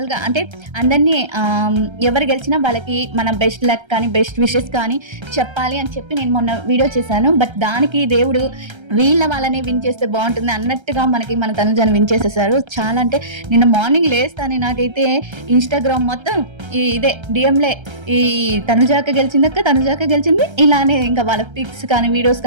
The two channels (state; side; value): late; left; 1.3 ms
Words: అంటే అందరినీ ఎవరు గెలిచినా వాళ్ళకి మన బెస్ట్ లక్ కానీ బెస్ట్ విషెస్ కానీ చెప్పాలి అని చెప్పి నేను మొన్న వీడియో చేశాను. బట్ దానికి దేవుడు వాళ్ళనే విన్ చేస్తే బాగుంటుంది అన్నట్టుగా మన తనుజాను విన్ చేసేసారు. చాలా అంటే నిన్న మార్నింగ్ లేస్తాను, నాకైతే ఇన్స్టాగ్రామ్ మొత్తం ఇదే డిఎంలే ఈ తనుజాక గెలిచింది ఇలానే ఇంకా వాళ్ళ పిక్స్ కానీ వీడియోస్